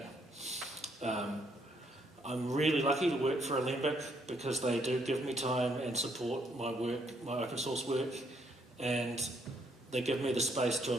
I'm really lucky to work for Alembic because they do give me time and support my work, my open source work, and they give me the space to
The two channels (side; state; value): both; normal; correlation 0.71